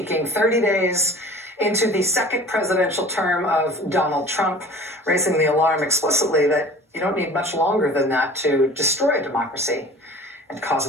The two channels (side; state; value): both; normal; correlation 0.43